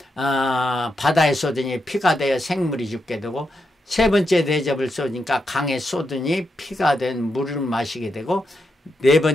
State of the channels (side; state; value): both; normal; correlation 0.84